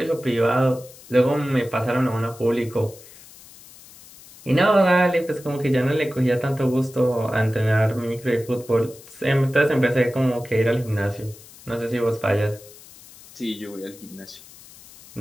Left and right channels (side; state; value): left; noise; hiss, 21 dB below the sound